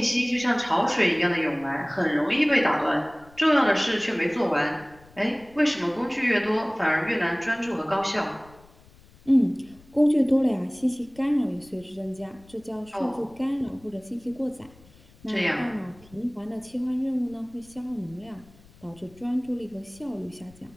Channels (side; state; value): left; noise; rumble, 26 dB below the sound